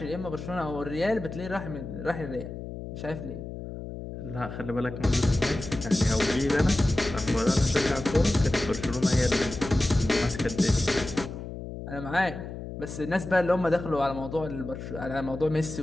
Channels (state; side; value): noise; left; hum, 9 dB below the sound